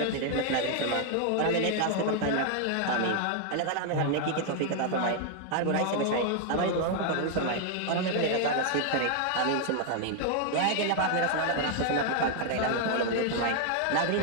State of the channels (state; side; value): different; both; correlation 0.00